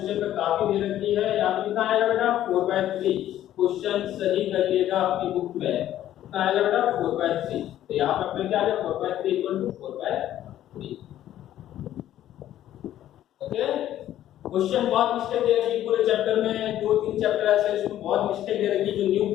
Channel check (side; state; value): right; quieter; 12.4 dB